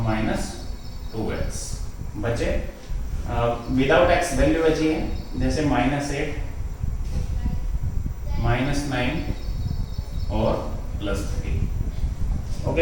माइनस 2x बचे। विदाउट x वैल्यू बची है, जैसे माइनस 8 माइनस 9 और प्लस 3।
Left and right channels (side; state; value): both; identical; correlation 1.00